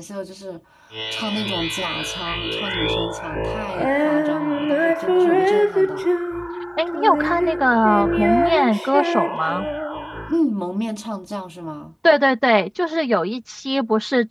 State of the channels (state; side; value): identical; both; correlation 1.00